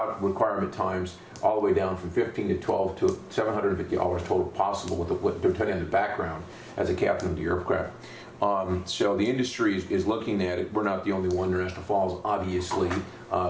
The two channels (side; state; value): both; identical; correlation 1.00